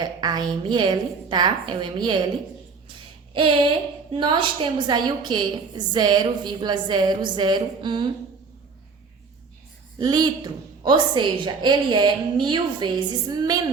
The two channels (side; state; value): left; quieter; 4.9 dB